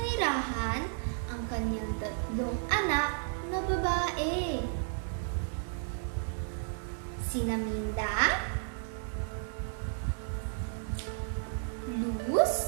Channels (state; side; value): silent; left; digital silence